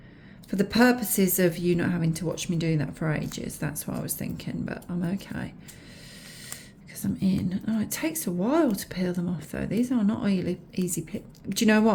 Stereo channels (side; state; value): both; identical; correlation 1.00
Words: For the purposes of you not having to watch me doing that for ages, that's what I was thinking, but I'm okay. Because I'm in. Oh, it takes a while to peel them off though. These are not easy peel. Do you know